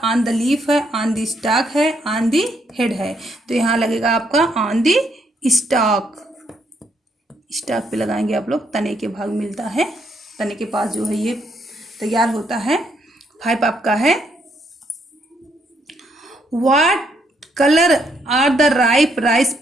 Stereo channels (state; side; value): normal; both; correlation 0.73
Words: ऑन द लीफ है, ऑन द स्टॉक है, ऑन द हेड है। तो यहाँ लगेगा आपका ऑन द स्टॉक। स्टॉक पे लगाएंगे आप लोग, तने के भाग मिलता है, तने के पास जो है ये तैयार होता है। 5 आपका है what colour are the ripe rice